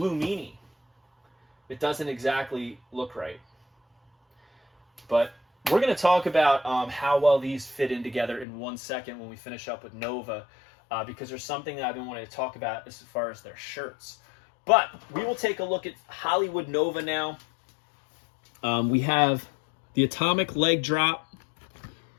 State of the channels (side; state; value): right; drops out; at 8.5 s